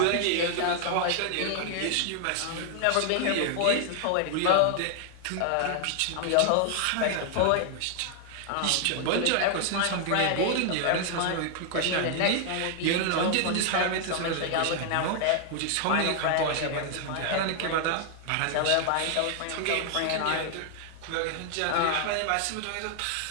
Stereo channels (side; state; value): both; different; correlation 0.00